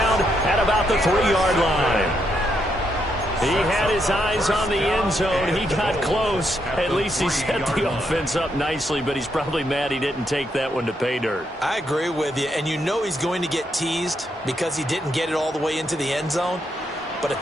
at about the 3-yard line. He had his eyes on the end zone. He got close. At least he set the offense up nicely, but he's probably mad he didn't take that one to pay dirt. I agree with you, and you know he's going to get teased because he didn't get it all the way into the end zone. But if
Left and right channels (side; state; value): both; normal; correlation 0.78